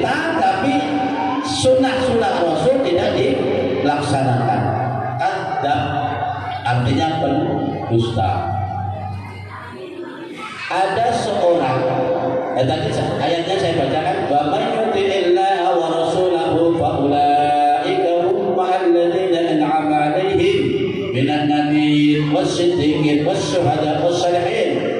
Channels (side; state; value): both; identical; correlation 1.00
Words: tapi sunnah Rasul tidak dilaksanakan. Kadzab artinya pendusta. Ada seorang, tadi ayatnya saya bacakan, wa may yuti'illaha wa rasulahu fa ulaika hum ma'alladzina an'ama 'alaihim minan nabiyyin was-siddiqin was-syuhada'i was-shalihin